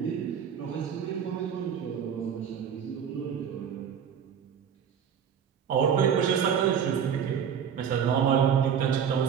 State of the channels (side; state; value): left; quieter; 7.9 dB